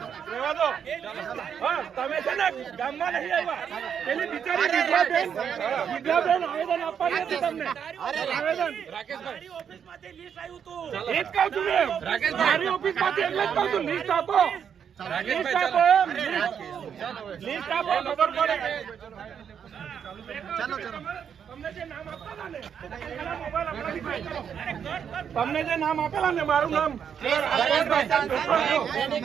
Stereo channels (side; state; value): left; quieter; 7.8 dB